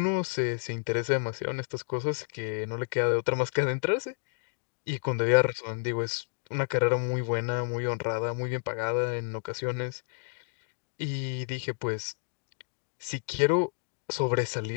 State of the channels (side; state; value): right; silent; digital silence